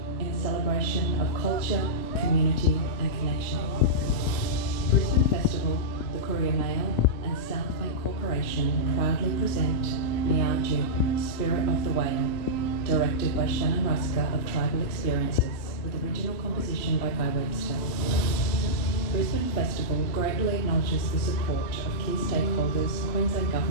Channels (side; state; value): right; late; 3.0 ms